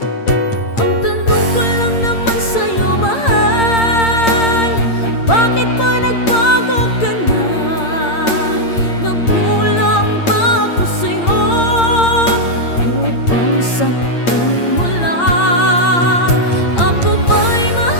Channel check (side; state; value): right; late; 8.7 ms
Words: Ang tanong ko lang naman sa'yo, mahal, bakit ba nagbago ka na? Nagkulang ba ako sa'yo upang saktan mo lang? Ako ba'y